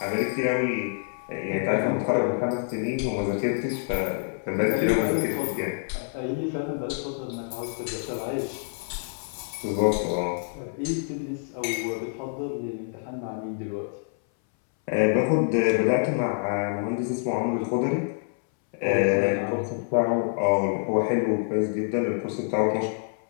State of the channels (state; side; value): silent; right; 60 dB below the other